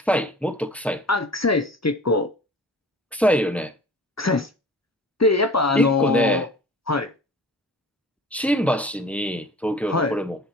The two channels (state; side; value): normal; both; correlation 0.43